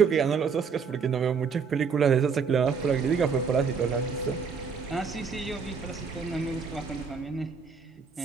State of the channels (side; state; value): left; quieter; 5.8 dB